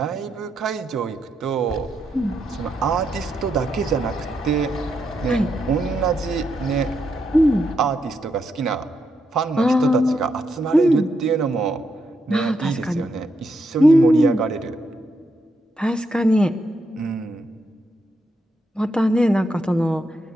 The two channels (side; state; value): both; normal; correlation 0.81